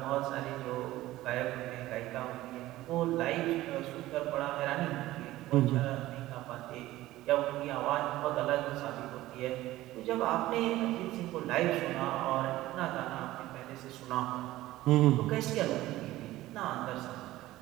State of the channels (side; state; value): left; quieter; 16.3 dB